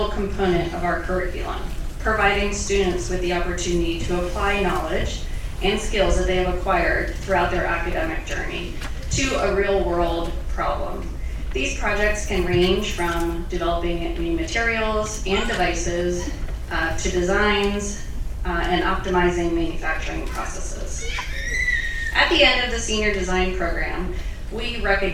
component of our curriculum, providing students with the opportunity to apply knowledge and skills that they have acquired throughout their academic journey to a real-world problem. These projects can range from developing new materials and devices to designs and optimizing manufacturing processes. At the end of the senior design program, we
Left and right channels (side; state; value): both; identical; correlation 1.00